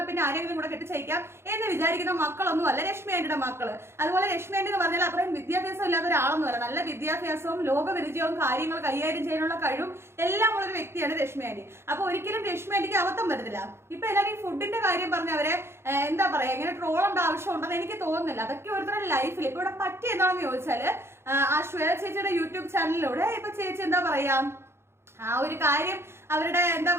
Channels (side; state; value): left; late; 0.12 ms